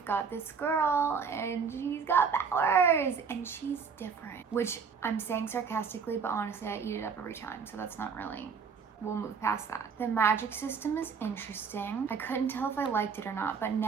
got this girl and she's got powers and she's different, which I'm saying sarcastically, but honestly I eat it up every time, so that's not really, we'll move past that. The magic system is interesting. I couldn't tell if I liked it or not, but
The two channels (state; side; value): quieter; left; 5.9 dB